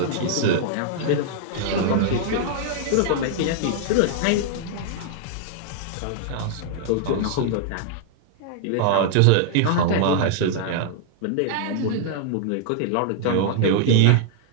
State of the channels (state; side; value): different; both; correlation -0.01